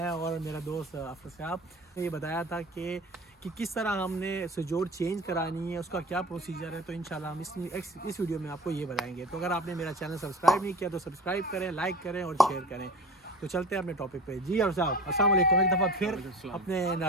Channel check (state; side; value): normal; both; correlation 0.38